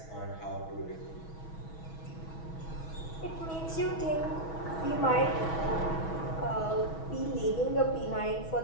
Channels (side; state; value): right; late; 6.2 ms